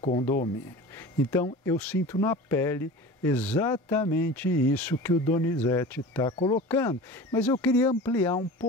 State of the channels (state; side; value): normal; both; correlation 0.36